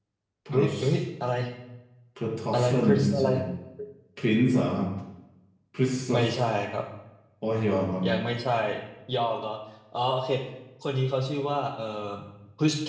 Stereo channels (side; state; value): both; identical; correlation 1.00